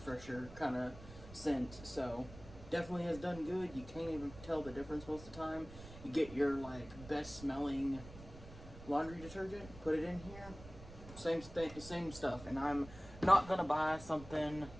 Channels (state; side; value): noise; right; rumble, 16 dB below the sound